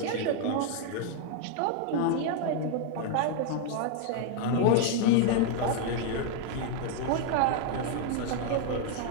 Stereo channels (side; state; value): both; different; correlation 0.00